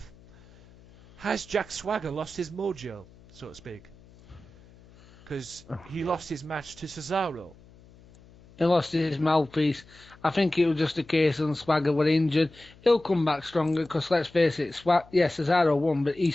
has Jack Swagger lost his mojo, so to speak? Because he lost his match to Cesaro. He lost his mouthpiece. I think it was just a case of Swagger were injured. He'll come back stronger because, let's face it, Cesaro won, but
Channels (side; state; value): left; noise; hum, 25 dB below the sound